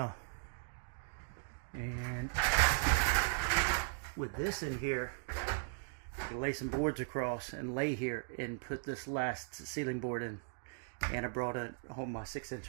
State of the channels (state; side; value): silent; left; digital silence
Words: And with this in here, I can lay some boards across and lay here and put this last ceiling board in. And I brought home my 6-inch